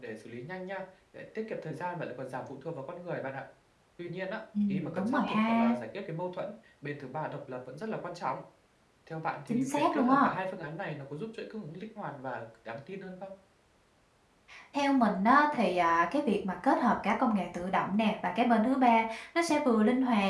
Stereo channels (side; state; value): both; identical; correlation 1.00